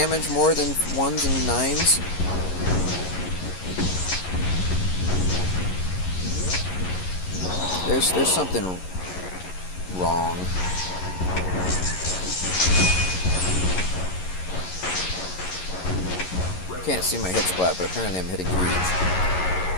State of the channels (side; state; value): right; late; 11 ms